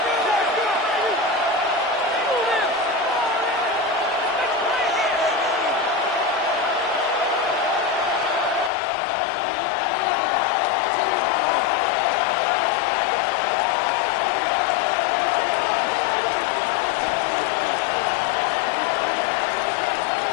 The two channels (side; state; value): right; drops out; at 8.7 s